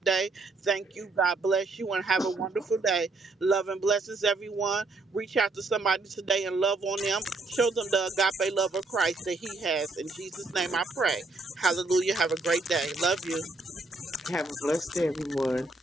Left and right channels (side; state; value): left; quieter; 3.3 dB